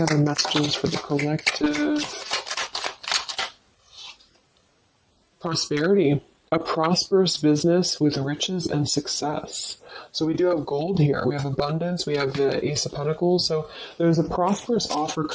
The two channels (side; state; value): both; identical; correlation 1.00